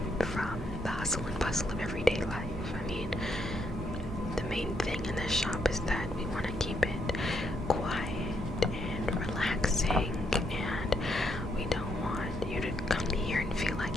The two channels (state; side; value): normal; both; correlation 0.76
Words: from the hustle and bustle of everyday life. I mean, the main thing in this shop is that we want to keep it quiet and relaxing, and we don't want you to come here and feel